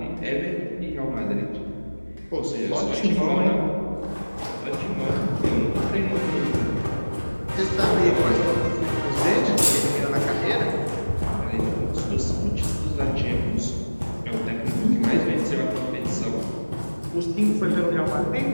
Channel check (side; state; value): both; inverted; correlation -1.00